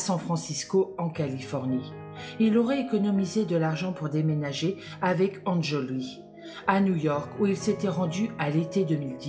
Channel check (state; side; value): identical; both; correlation 1.00